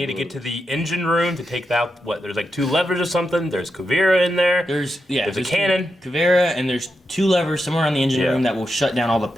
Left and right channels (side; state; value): both; normal; correlation 0.86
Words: to get to the engine room to take out there's like 2 levers or something. There's Kuvira in there. There's a cannon. Kuvira, and there's 2 levers somewhere on the engine Yeah. room that will shut down all the